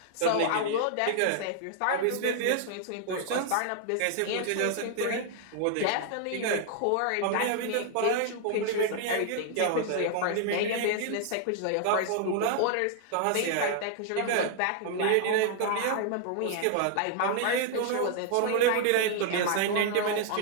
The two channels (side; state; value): both; different; correlation 0.00